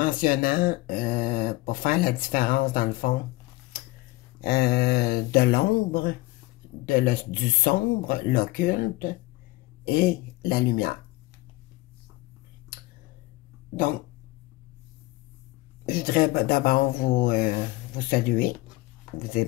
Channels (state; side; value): quieter; right; 20.1 dB